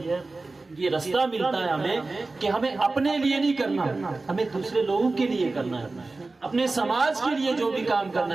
یہ رستہ ملتا ہے ہمیں کہ ہمیں اپنے لیے نہیں کرنا، ہمیں دوسرے لوگوں کے لیے کرنا ہے، اپنے سماج کے لیے جو بھی کام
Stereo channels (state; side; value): quieter; left; 3.4 dB